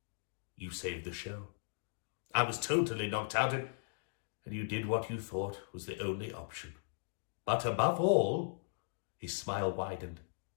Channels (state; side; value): silent; right; digital silence